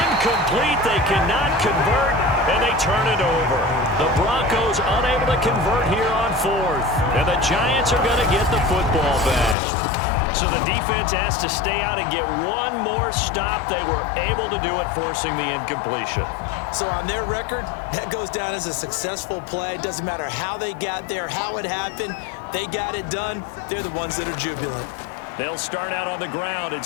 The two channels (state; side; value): drops out; right; at 9.6 s